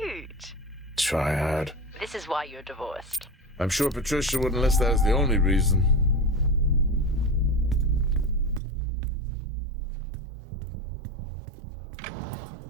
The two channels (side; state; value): left; drops out; at 8.6 s